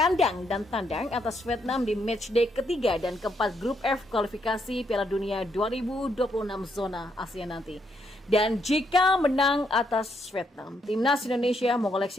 dan tandang atas Vietnam di matchday ketiga dan keempat grup F kualifikasi Piala Dunia 2026 zona Asia nanti. Dan jika menang atas Vietnam, timnas Indonesia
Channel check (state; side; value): normal; both; correlation 0.75